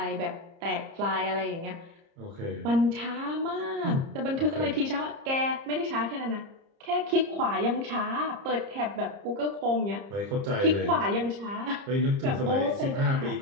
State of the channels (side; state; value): left; late; 30 ms